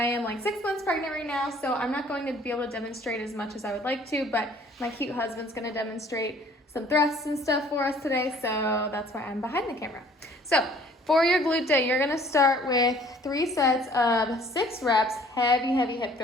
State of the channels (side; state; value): both; normal; correlation 0.56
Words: am like 6 months pregnant right now, so I'm not going to be able to demonstrate as much as I would like to, but my cute husband's gonna demonstrate some thrusts and stuff for us today, so that's why I'm behind the camera. So for your glute day, you're gonna start with 3 sets of 6 reps, heavy hip